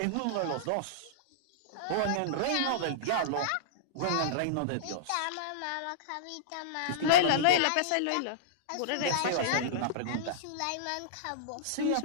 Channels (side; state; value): both; different; correlation -0.02